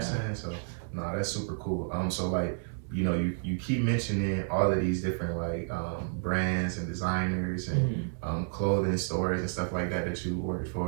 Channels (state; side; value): silent; left; digital silence